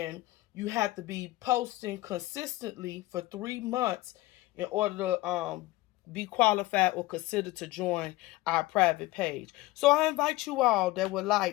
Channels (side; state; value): right; quieter; 18.9 dB